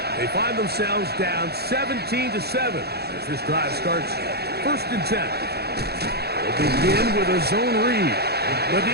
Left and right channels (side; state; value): left; late; 0.47 ms